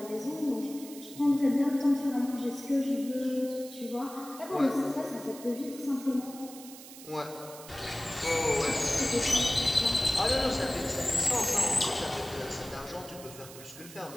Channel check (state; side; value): noise; right; hiss, 16 dB below the sound